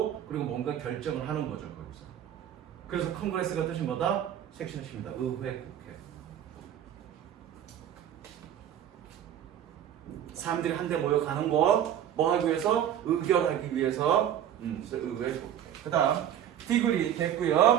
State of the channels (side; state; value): left; quieter; 10.2 dB